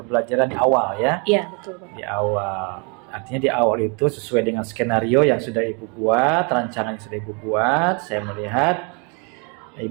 di awal ya? Iya, betul Bapak. Di awal, artinya di awal itu sesuai dengan skenario yang sudah Ibu buat, rancangan yang sudah Ibu buat. Saya melihat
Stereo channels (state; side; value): quieter; left; 34.0 dB